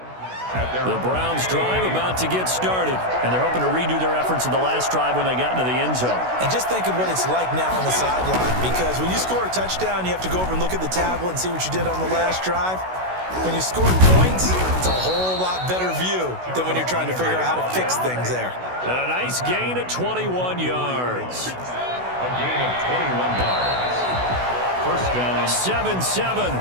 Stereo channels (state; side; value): late; left; 16 ms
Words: The Browns drive about to get started, and they're hoping to redo their efforts in the last drive when they got into the end zone. And just think of what it's like now on the sideline, because when you score a touchdown, you have to go over and look at the tablet and see what you did on the last drive. When you score points, it's a whole lot better view than when you're trying to figure out how to fix things there. And a nice gain at 21 yards. A gain of 21 yards. First down. 7-7,